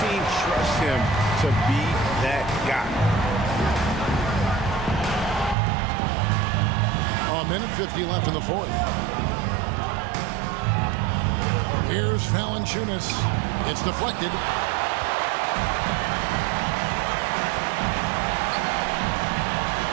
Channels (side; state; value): left; drops out; at 5.6 s